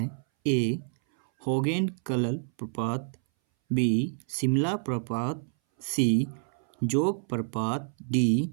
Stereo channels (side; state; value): left; silent; 59 dB below the other